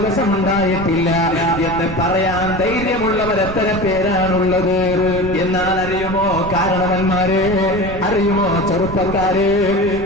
ഉണ്ടായിട്ടില്ല എന്ന് പറയാൻ ധൈര്യമുള്ളവർ എത്ര പേരാണുള്ളത്? എന്നാൽ അറിയുമോ കാരണവന്മാരെ, അറിയുമോ ചെറുപ്പക്കാരെ,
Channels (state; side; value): noise; right; rumble, 9 dB below the sound